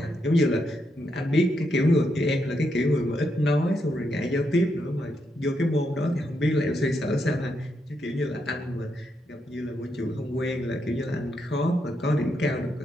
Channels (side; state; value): both; normal; correlation 0.81